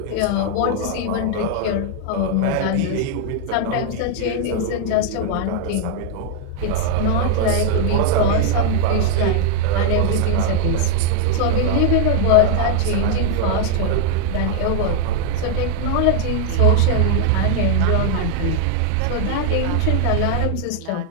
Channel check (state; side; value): different; both; correlation -0.01